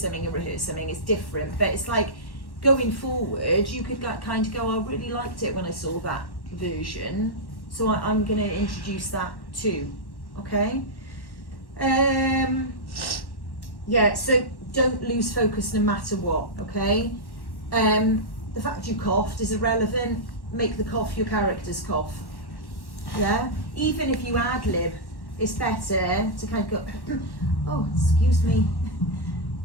something it's different. But it's like, going forward, you could like, kind of go, I really liked it when I saw that version. So I'm going to introduce that too. Okay? Yeah, so don't lose focus no matter what, okay? The fact you coughed is irrelevant. Make the cough your character's cough. Yeah? Even if you ad-lib, it's better to kind of go, oh, excuse me,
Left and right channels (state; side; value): late; right; 1.1 ms